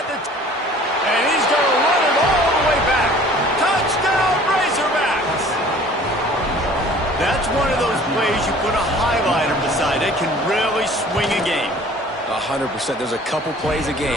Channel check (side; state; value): both; normal; correlation 0.50